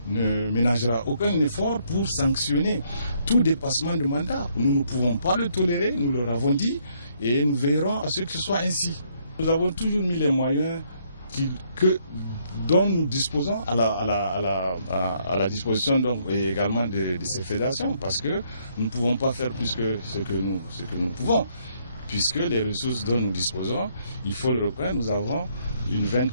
ne ménagera aucun effort pour sanctionner tout dépassement de mandat. Nous ne pouvons pas le tolérer, nous leur avons dit, et nous veillerons à ce que ce soit ainsi. Nous avons toujours mis les moyens dont nous disposons à la disposition donc, également de ces fédérations, parce que nous ne pouvons pas faire plus que ce que nous pouvons, puisque les ressources dont nous disposons, il faut le reconnaître, nous avons une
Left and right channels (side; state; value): both; inverted; correlation -0.70